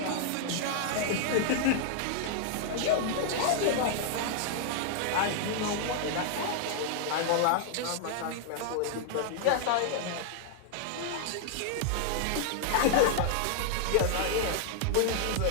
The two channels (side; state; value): both; different; correlation -0.01